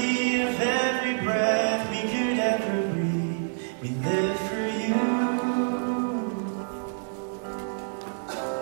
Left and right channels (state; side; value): silent; left; digital silence